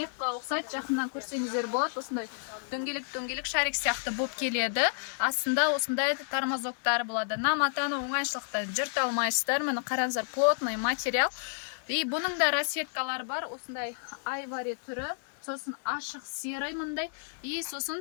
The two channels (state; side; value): silent; right; 57 dB below the other